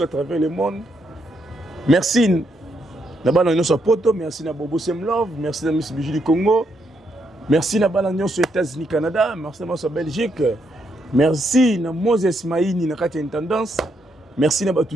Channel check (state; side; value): normal; both; correlation 0.77